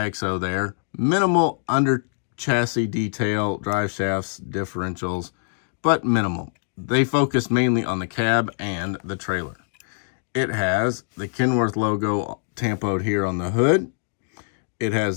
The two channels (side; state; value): right; silent; digital silence